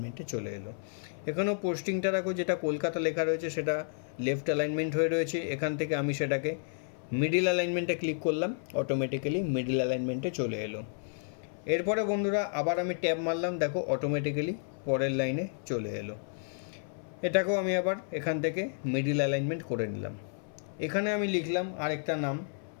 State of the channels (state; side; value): silent; right; 57 dB below the other